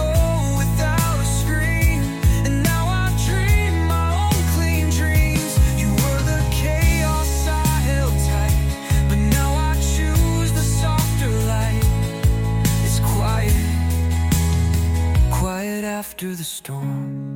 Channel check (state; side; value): identical; both; correlation 1.00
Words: without a scream, and now I dream my own clean dreams. You were the chaos I held tight, but now I choose the softer light. It's quiet, quiet after the